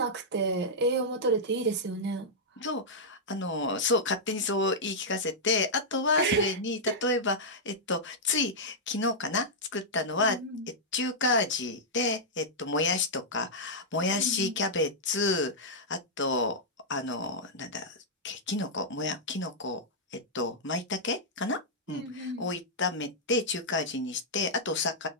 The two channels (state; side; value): normal; both; correlation -0.08